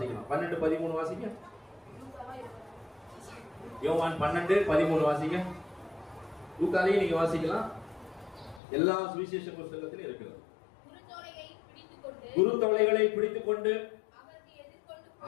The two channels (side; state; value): right; drops out; at 8.6 s